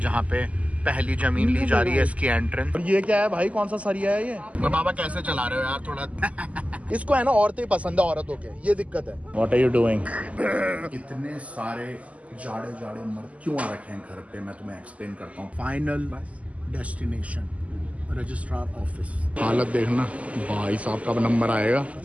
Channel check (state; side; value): late; left; 0.068 ms